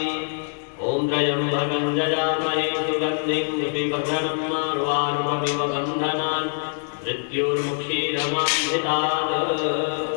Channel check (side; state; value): right; silent; digital silence